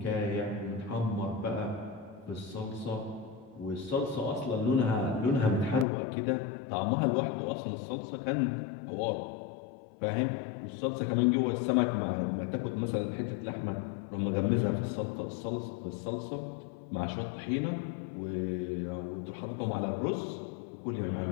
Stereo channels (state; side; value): drops out; right; at 5.9 s